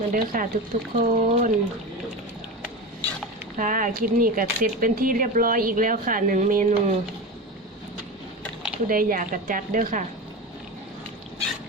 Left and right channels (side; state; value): both; normal; correlation 0.25